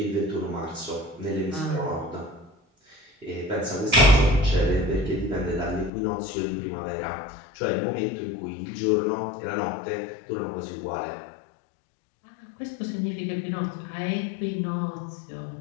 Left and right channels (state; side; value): drops out; right; at 5.9 s